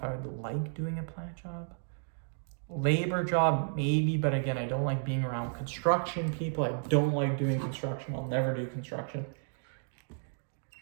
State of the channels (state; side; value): silent; left; digital silence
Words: I would like doing a plant job. Labor job, maybe, but again, I don't like being around construction people. I don't like doing construction. I'll never do construction.